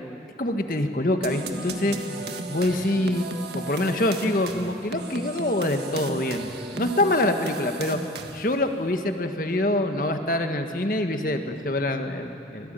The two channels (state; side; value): normal; both; correlation 0.44